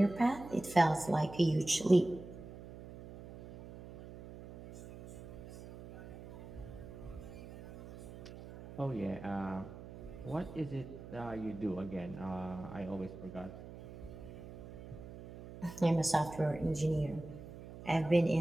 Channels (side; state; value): right; noise; hum, 14 dB below the sound